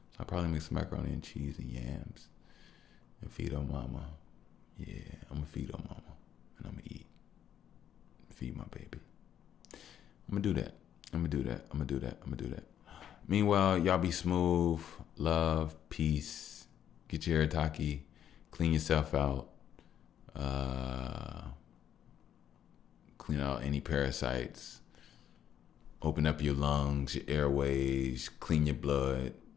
So I'll probably make some macaroni and cheese and yams and feed on mama. Yeah, I'm gonna feed on mama and I'm gonna eat. Feed my baby. I'm gonna do that. Meanwhile, y'all be smooth, love, peace. Get your Haritaki, clean yourself out, clean out any parasites, open up your lungs, your airways, clean your blood,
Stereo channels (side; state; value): right; quieter; 10.0 dB